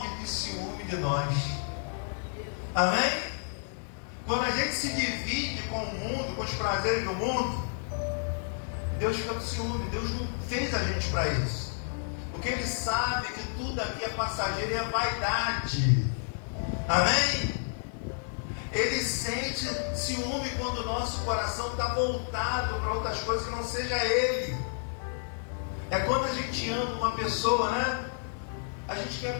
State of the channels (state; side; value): silent; right; 57 dB below the other